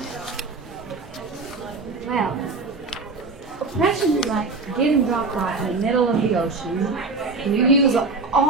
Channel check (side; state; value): left; quieter; 3.8 dB